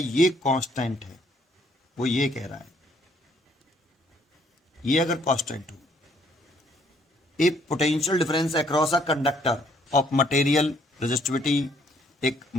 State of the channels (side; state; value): both; normal; correlation 0.65